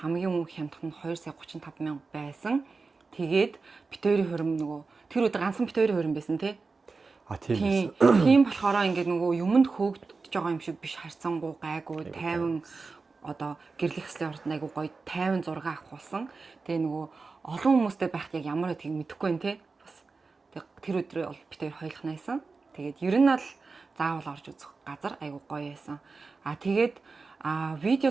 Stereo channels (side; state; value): left; quieter; 4.2 dB